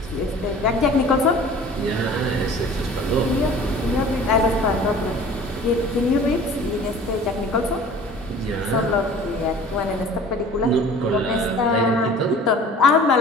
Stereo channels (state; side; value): normal; both; correlation 0.45